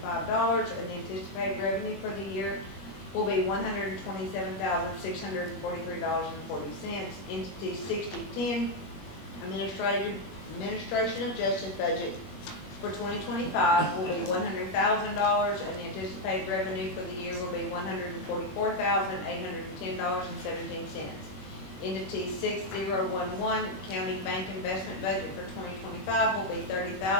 the anticipated revenue for the year will be $127,643.40. Entity 6010, Administration of Justice budget for 2025 will be $100,000, and the anticipated revenue for the year will be $144,810.17. Entity 6011, County Bank Investment budget for 2025 will be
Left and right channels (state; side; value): late; right; 21 ms